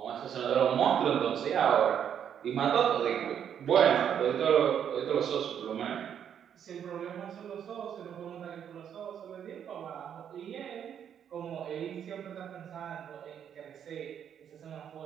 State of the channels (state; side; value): quieter; left; 8.8 dB